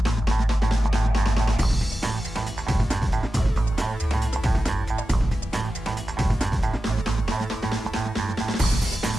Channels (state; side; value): normal; both; correlation 0.92